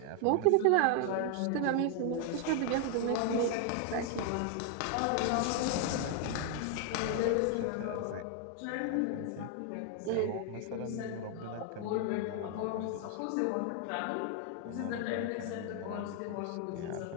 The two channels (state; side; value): different; both; correlation 0.00